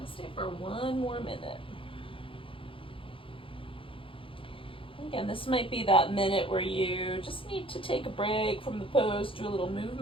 stay for 1 more minute. Again, this might be that minute where you just need to take a break from the pose, do a little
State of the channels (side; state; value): right; late; 0.26 ms